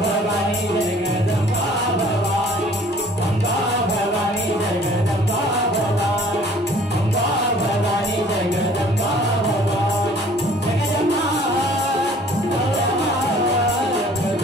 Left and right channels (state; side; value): normal; both; correlation 0.53